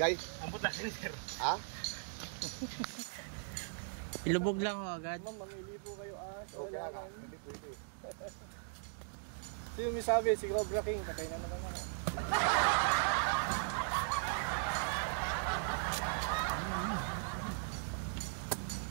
Guys? Ang butasin, sir. Ha? Ilubog lang ho agad. Manglilibo kayo Okay, aga. Hindi pwede. Sino may sabi? Si Cobra King. Okay na naman.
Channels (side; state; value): left; silent; digital silence